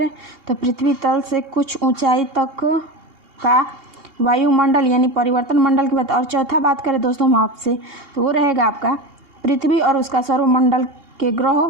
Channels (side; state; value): left; late; 2.8 ms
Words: तो पृथ्वी तल से कुछ ऊंचाई तक का वायुमंडल यानी परिवर्तन मंडल की बात। और चौथा बात करें दोस्तों हम आपसे तो वो रहेगा आपका पृथ्वी और उसका सौरमंडल के ग्रह,